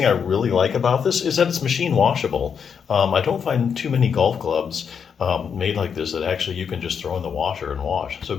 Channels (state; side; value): quieter; right; 6.9 dB